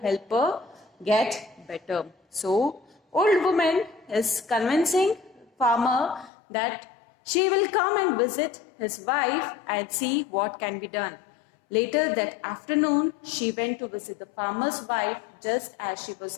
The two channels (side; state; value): right; drops out; at 6.3 s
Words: her get better. So, old woman is convincing farmer that she will come and visit his wife and see what can be done. Later that afternoon, she went to visit the farmer's wife. Just as she